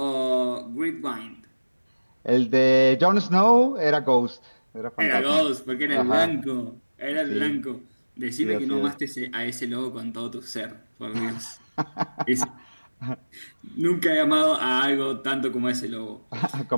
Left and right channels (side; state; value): both; inverted; correlation -1.00